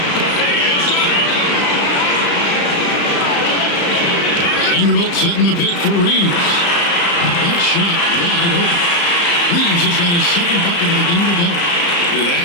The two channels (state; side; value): late; right; 35 ms